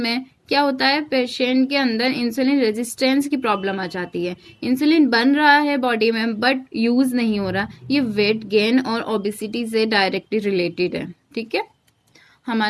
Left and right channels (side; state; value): both; identical; correlation 1.00